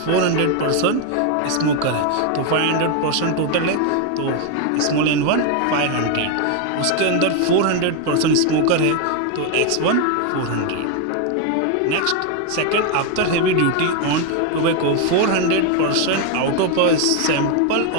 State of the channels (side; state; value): both; different; correlation 0.01